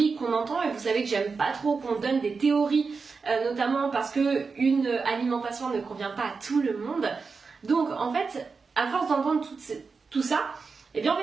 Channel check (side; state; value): left; quieter; 4.8 dB